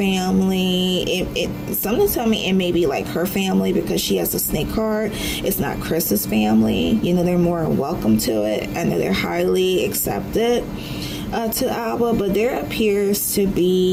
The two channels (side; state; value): both; identical; correlation 1.00